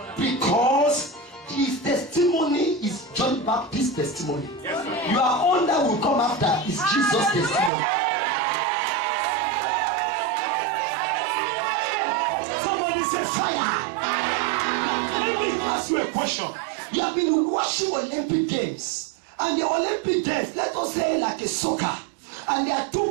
Because his testimony is John Baptist's testimony. Your own that will come after is Jesus' testimony. Somebody say fire. Let me ask you a question. You have been watching Olympic Games, and the Olympic Games, let us say like a soccer, and there are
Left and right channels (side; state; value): left; drops out; at 7.7 s